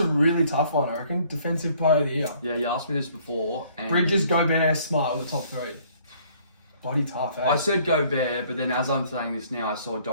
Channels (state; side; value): inverted; both; correlation -0.60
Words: really tough one, I reckon. Defensive Player of the Year. Yeah, you asked me this before. And Bridges, Gobert, Smart were the top 3. Bloody tough, eh? I said Gobert, but then as I'm saying this now, I saw